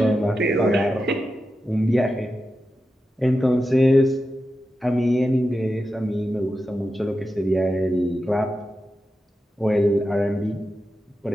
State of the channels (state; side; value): normal; both; correlation 0.90